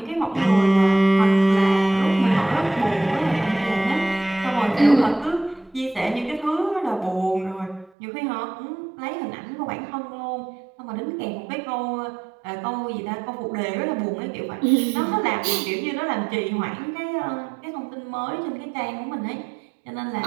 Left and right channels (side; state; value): left; drops out; at 7.9 s